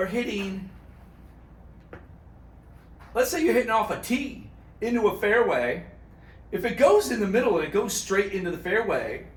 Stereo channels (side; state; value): both; identical; correlation 1.00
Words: hitting, let's say you're hitting off a tee into a fairway, if it goes in the middle and it goes straight into the fairway,